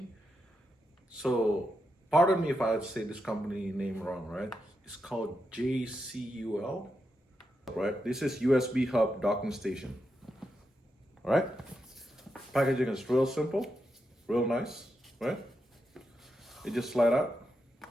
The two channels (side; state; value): both; normal; correlation 0.85